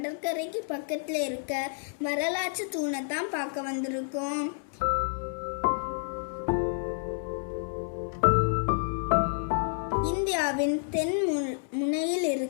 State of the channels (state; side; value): silent; right; 58 dB below the other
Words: பக்கத்தில் இருக்க வரலாற்று தூணை தான் பார்க்க வந்திருக்கோம். இந்தியாவின் தென் முனையில்